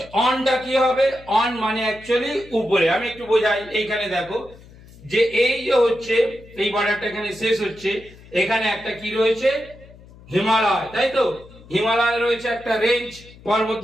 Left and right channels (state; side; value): noise; left; hum, 22 dB below the sound